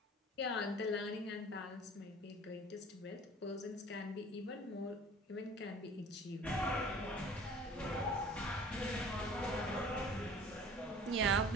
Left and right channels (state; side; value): normal; both; correlation 0.46